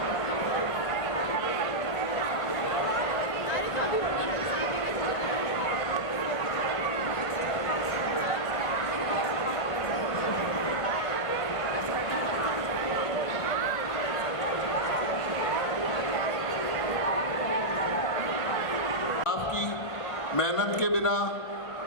मेहनत के बिना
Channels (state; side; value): late; right; 1.5 ms